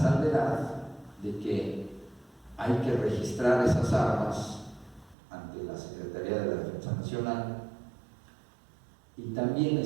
de que hay que registrar esas armas ante la Secretaría de la Defensa Nacional, y también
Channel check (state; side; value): drops out; left; at 5.2 s